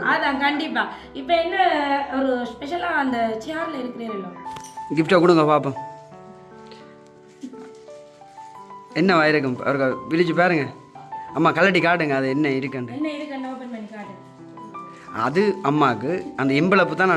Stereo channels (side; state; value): both; identical; correlation 1.00